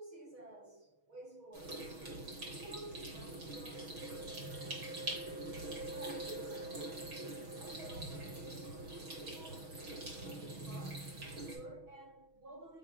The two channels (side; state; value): left; late; 6.3 ms